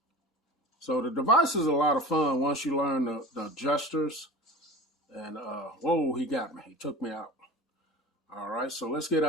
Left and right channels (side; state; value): both; normal; correlation 0.34